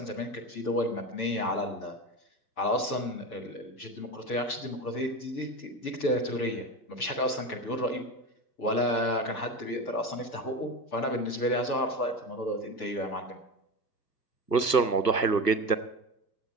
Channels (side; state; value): right; late; 1.3 ms